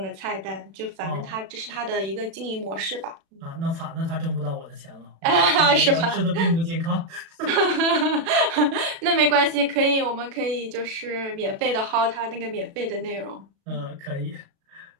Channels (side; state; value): left; late; 36 ms